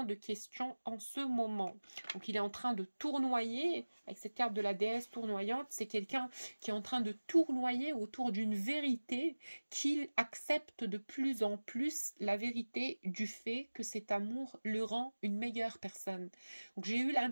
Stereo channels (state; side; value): inverted; both; correlation -1.00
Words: de questions en ce moment. Donc il est en train de tournoyer, avec cette carte de la déesse tournoyante, c'est quelqu'un qui est en train de tournoyer autour d'une vérité, qu'il accepte de plus en plus la vérité du fait que cet amour le rend une meilleure personne. Donc j'ai